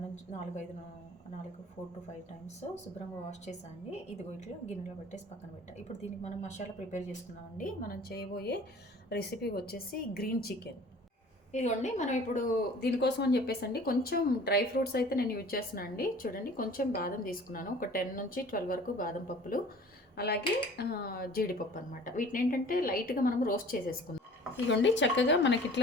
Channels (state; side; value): normal; both; correlation 0.47